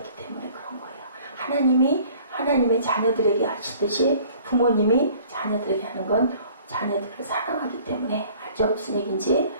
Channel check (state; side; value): inverted; both; correlation -0.53